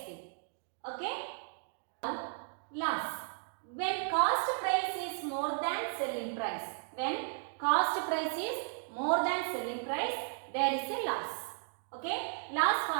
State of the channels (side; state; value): left; silent; digital silence